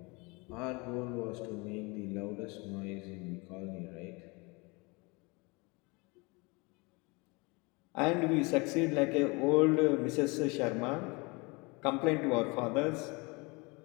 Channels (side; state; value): right; quieter; 27.6 dB